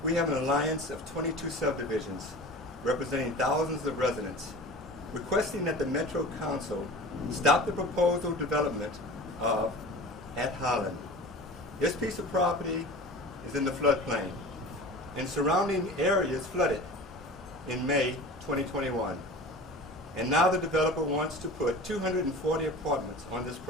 We have an alliance of 22 subdivisions representing thousands of residents, requesting that the Metro Council stop the proposal development of at Holland. This piece of property is in the floodplain, and surrounding areas flooded in May 2021. And now the developer wants to put 240 apartments on this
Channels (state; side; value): normal; both; correlation 0.37